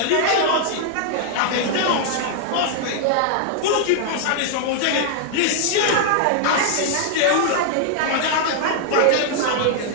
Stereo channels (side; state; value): both; different; correlation -0.01